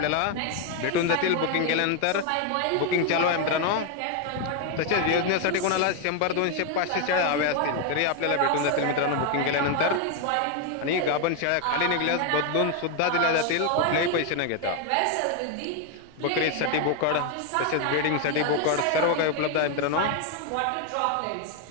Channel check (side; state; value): both; different; correlation 0.01